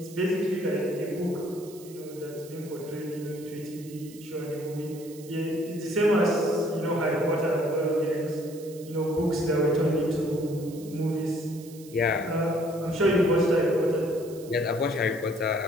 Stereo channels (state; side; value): noise; right; hiss, 20 dB below the sound